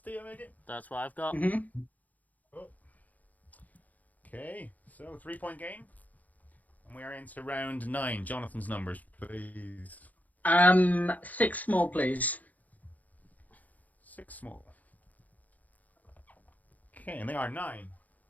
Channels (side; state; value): right; late; 0.078 ms